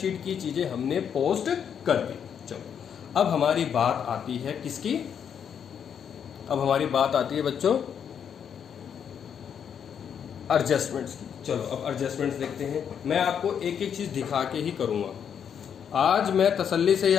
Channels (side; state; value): right; quieter; 8.0 dB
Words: की चीजें हमने पोस्ट कर दी। चलो, अब हमारी बात आती है किसकी? अब हमारी बात आती है बच्चों एडजस्टमेंट्स की। चलो, अब एडजस्टमेंट्स देखते हैं। मैं आपको एक एक चीज दिखा के ही करूंगा। आज मैं तसल्ली से ही